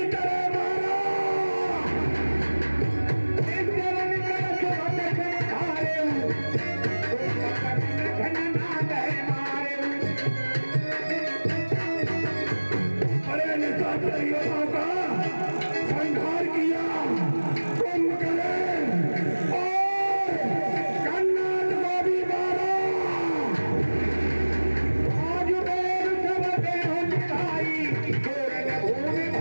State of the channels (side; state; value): both; inverted; correlation -1.00